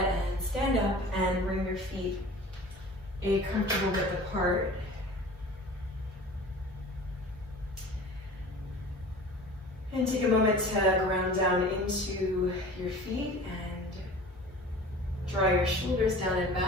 stand up and bring your feet a comfortable width apart. And take a moment to ground down into your feet and draw your shoulders down and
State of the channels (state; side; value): normal; both; correlation 0.41